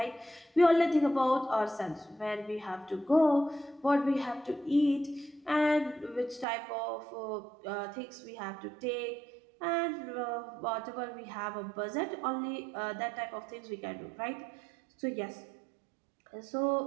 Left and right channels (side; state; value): left; drops out; at 6.5 s